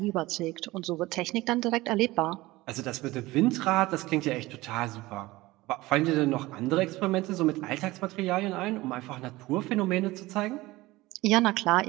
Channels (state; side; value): quieter; left; 19.4 dB